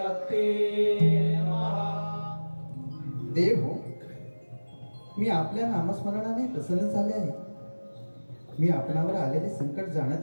नमः. देव हो, मी आपल्या नामस्मरणाने प्रसन्न झाले आहे. मी आपणावर आलेले संकट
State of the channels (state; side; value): inverted; both; correlation -1.00